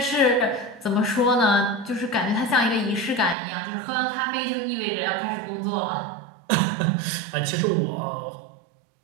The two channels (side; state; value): left; drops out; at 3.4 s